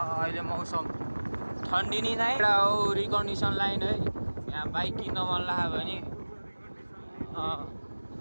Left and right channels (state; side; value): inverted; both; correlation -1.00